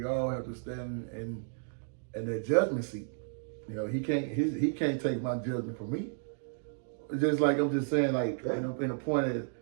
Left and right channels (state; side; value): silent; left; digital silence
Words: all have to stand in that judgment seat. He can't take my judgment from me. Just like I'm just saying, like in a point is,